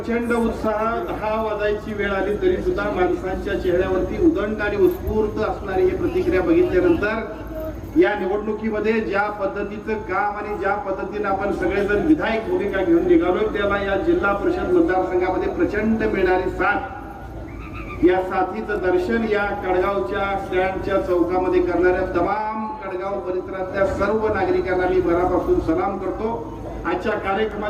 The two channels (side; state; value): both; identical; correlation 1.00